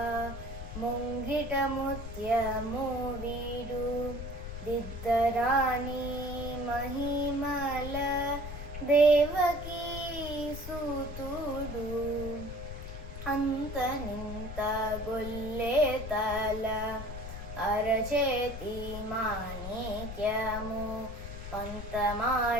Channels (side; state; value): left; noise; rumble, 8 dB below the sound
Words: ಮುಂಗಿಟ ಮುತ್ಯ ಮೂವಿಡು ದಿದ್ದರಾಣಿ ಮಹಿಮಲ ದೇವಕೀ ಸುತುಡು ಅಂತ ನಿಂತ ಗೊಲ್ಲೆ ತಲ ಅರಚೇತಿ ಮಾಣಿಕ್ಯಮು ಪಂತ